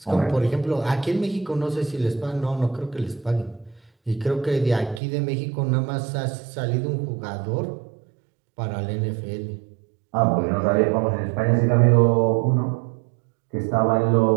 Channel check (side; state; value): left; drops out; at 5.0 s